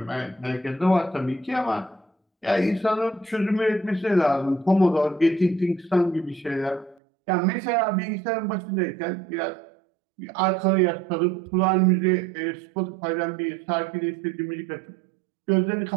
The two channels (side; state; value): left; drops out; at 7.0 s